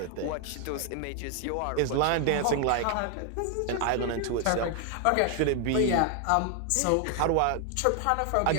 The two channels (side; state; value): both; different; correlation 0.00